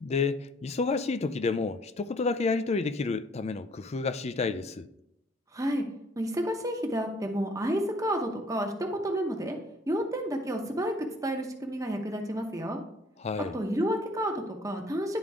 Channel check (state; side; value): normal; both; correlation 0.59